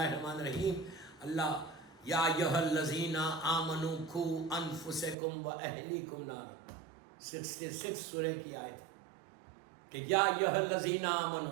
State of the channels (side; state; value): left; drops out; at 5.2 s